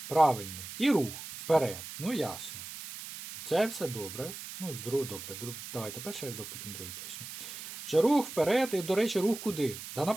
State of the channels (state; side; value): noise; right; hiss, 11 dB below the sound